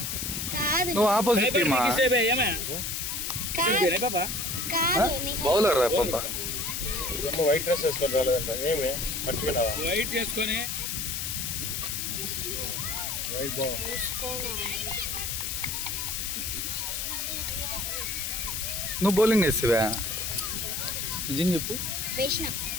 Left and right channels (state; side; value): noise; left; hiss, 2 dB below the sound